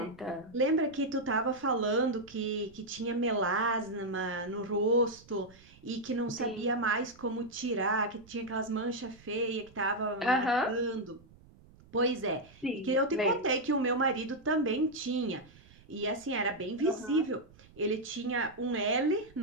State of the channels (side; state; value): right; noise; rumble, 25 dB below the sound